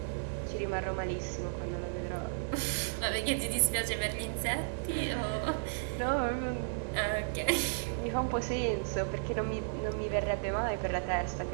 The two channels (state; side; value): silent; left; digital silence